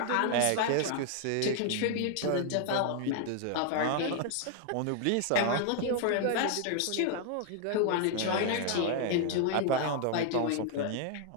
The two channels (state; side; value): different; both; correlation 0.00